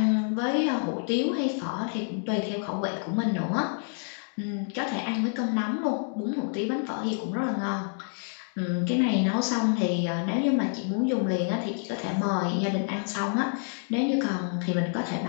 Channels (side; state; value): right; silent; 59 dB below the other